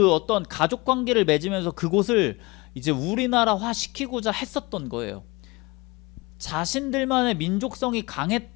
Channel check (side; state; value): right; quieter; 24.3 dB